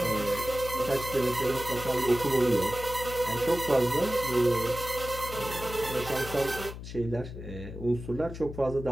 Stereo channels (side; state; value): left; noise; hum, 10 dB below the sound